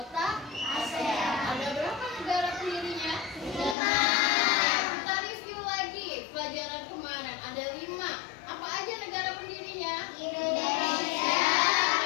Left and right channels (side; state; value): right; drops out; at 3.8 s